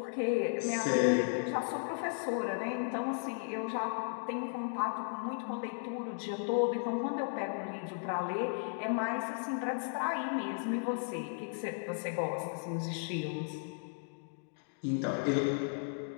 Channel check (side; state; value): right; silent; digital silence